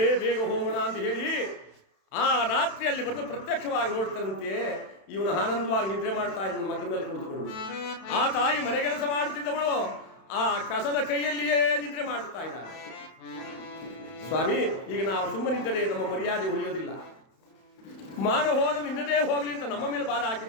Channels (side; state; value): right; late; 31 ms